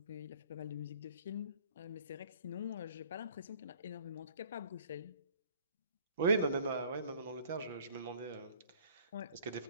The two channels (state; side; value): inverted; both; correlation -0.53